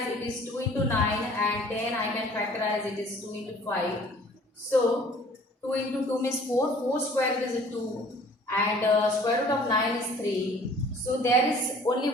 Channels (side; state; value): both; normal; correlation 0.52